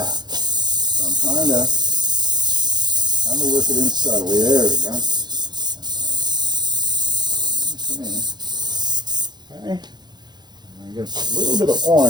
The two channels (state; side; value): late; left; 0.21 ms